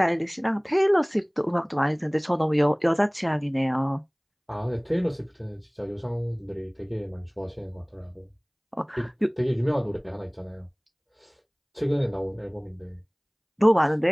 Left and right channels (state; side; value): identical; both; correlation 1.00